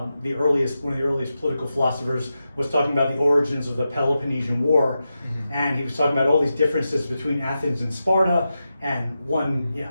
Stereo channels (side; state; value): both; inverted; correlation -0.90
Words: the earliest political philosophers, was talking about the origins of the Peloponnesian War, and he was talking about all these differences between Athens and Sparta, and one